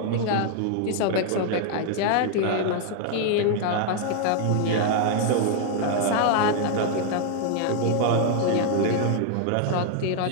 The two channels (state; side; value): different; both; correlation 0.00